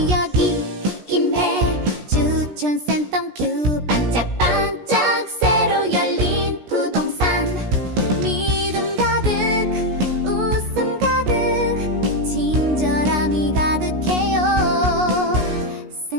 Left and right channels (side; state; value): left; late; 17 ms